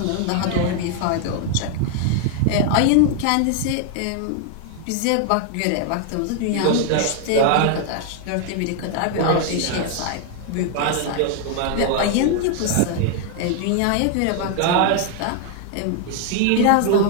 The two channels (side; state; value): both; different; correlation 0.00